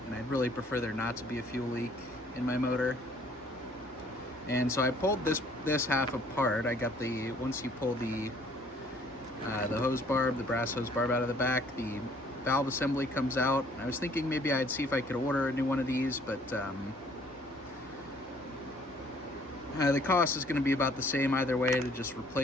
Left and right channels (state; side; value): normal; both; correlation 0.59